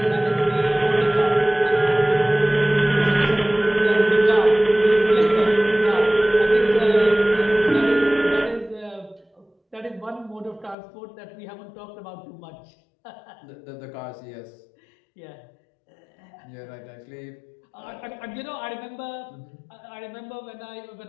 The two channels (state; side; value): drops out; right; at 10.8 s